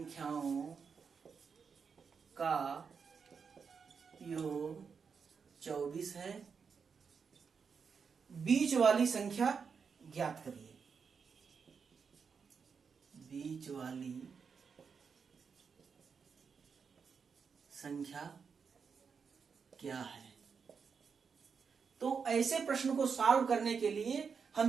का योग 24 है। बीच वाली संख्या ज्ञात करिए। बीच वाली संख्या क्या है? तो ऐसे प्रश्न को सॉल्व करने के लिए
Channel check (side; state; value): left; quieter; 5.9 dB